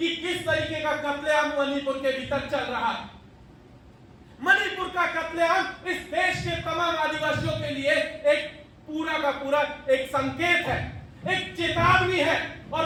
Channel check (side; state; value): both; identical; correlation 1.00